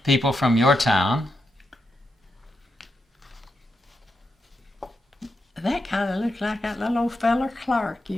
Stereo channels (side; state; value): both; normal; correlation 0.85